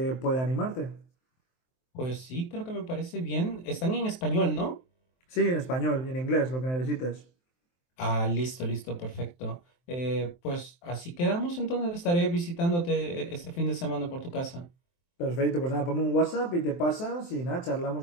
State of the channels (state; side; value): late; right; 23 ms